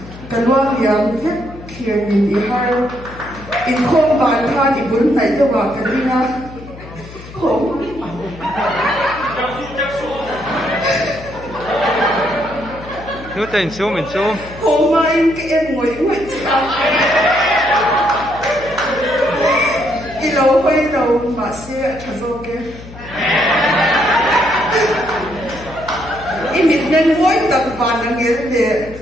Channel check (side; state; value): left; noise; hum, 16 dB below the sound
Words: cái loang liang vết kia nhìn đi hai in không bàn tha thì bốn này cho vào cái đi na không Nếu tình xuống mình xuống không mà in cái em ngồi chào đi lâu quay đầu mà xe thật rồi cái in mình nên mỗi tập bàn là nghĩa để